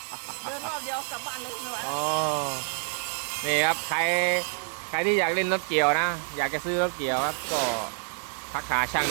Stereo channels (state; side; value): silent; left; digital silence